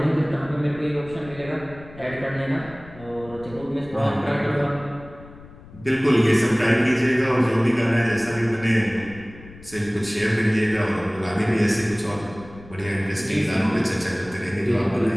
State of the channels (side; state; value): left; noise; rumble, 19 dB below the sound